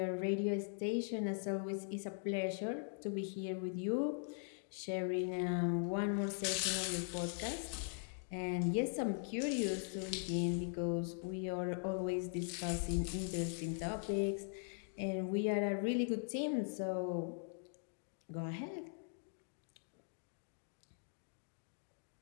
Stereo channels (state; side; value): silent; right; digital silence